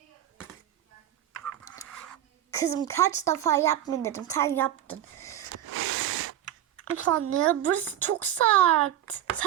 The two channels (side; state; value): left; quieter; 11.7 dB